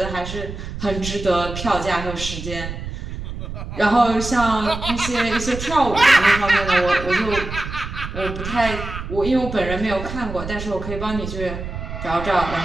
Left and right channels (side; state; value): right; noise; rumble, 8 dB below the sound